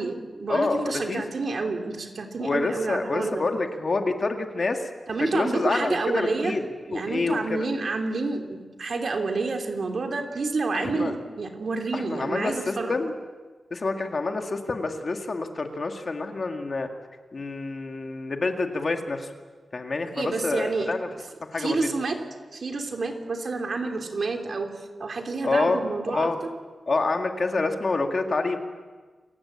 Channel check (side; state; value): both; normal; correlation 0.90